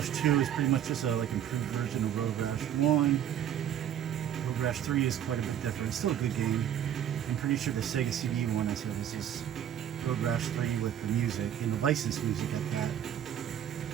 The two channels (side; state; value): left; quieter; 10.3 dB